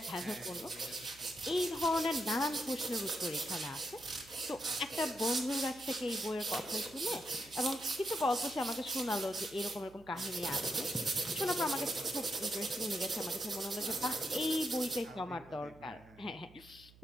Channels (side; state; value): right; noise; hum, 23 dB below the sound